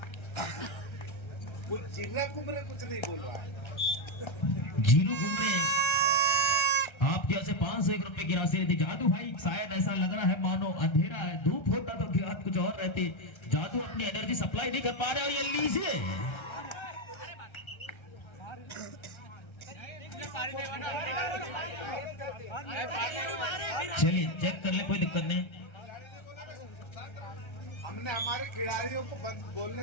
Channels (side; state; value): right; late; 1.3 ms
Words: जिगरा कुमरे कुछ नहीं बोल रहा है। जीरू घूमरे आपकी ओर से 501 रुपए की राशि रहती। जादू भाई शायद ऐसा लग रहा है मानो अंधेरा है, धूप होता तो बात कुछ और रहती। जादू अपनी एनर्जी सप्लाई नहीं कर पा रहे। और ये लीजिए चलिए चेक कर ले, कोई दिक्कत नहीं। हमने हमारे खिलाड़ियों को